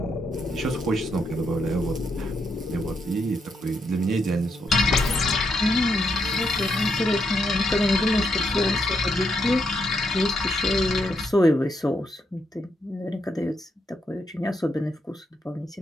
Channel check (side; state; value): both; normal; correlation 0.79